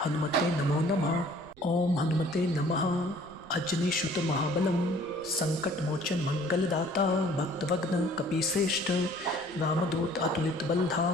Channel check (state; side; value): noise; right; rumble, 26 dB below the sound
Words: हनुमते नमो नमः। ओम हनुमते नमः। अजनीसुत महाबलम संकट मोचन मंगलदाता भक्तवग्न कपीश्रेष्ठ रामदूत अतुलित